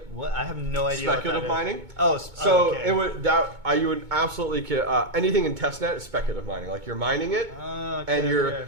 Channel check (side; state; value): left; late; 2.2 ms